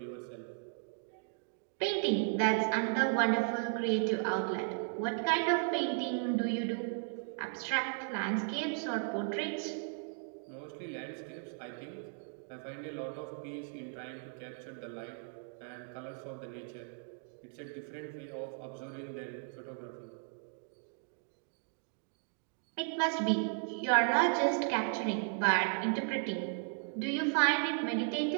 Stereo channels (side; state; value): left; silent; 54 dB below the other